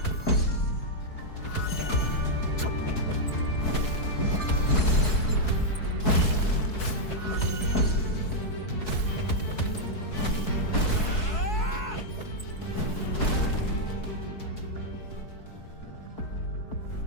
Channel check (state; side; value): late; right; 4.7 ms